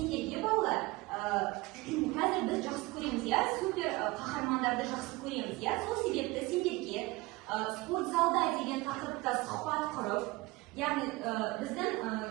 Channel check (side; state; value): left; quieter; 22.1 dB